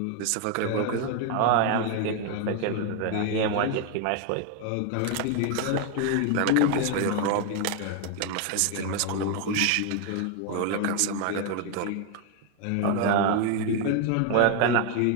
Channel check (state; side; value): different; both; correlation 0.01